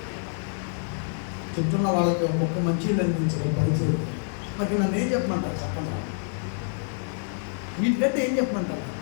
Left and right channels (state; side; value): silent; right; digital silence